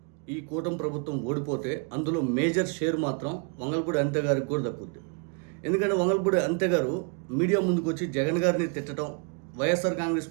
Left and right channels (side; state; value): left; quieter; 37.6 dB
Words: ఈ కూటమి ప్రభుత్వం ఓడిపోతే అందులో మేజర్ షేర్ మాత్రం వంగలపూడి అంతే గారికి కూడా దక్కుద్ది. ఎందుకంటే వంగలపూడి అంతే గారు మీడియా ముందుకు వచ్చి జగన్ గారిని తిట్టడం, వైఎస్ఆర్ కాంగ్రెస్